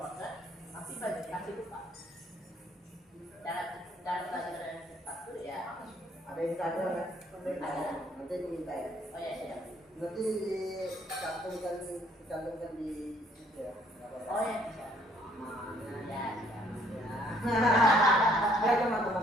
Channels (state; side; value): normal; both; correlation 0.64